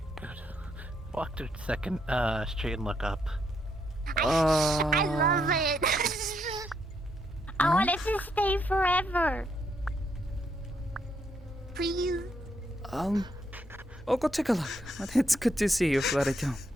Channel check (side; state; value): both; normal; correlation 0.76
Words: Good. Walk to the second street and look up. I love it. I want it to stay forever. Please. I'll go take a look. It's good to see you, Flarito.